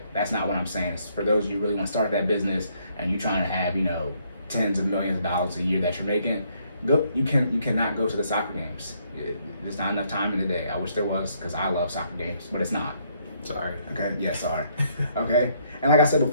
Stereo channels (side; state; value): both; inverted; correlation -0.70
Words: That's not what I'm saying. It's for those of you who really want to start that business and you're trying to have, tens of millions of dollars a year that you're making, you cannot go to the soccer games. There's not enough time in the day. I wish there was, because I love soccer games, but it's not. Sorry. Okay, yeah, sorry. Okay, and like I said